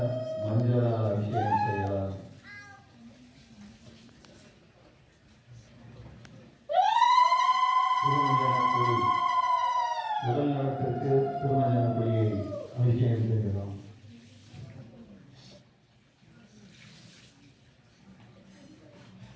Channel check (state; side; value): identical; both; correlation 1.00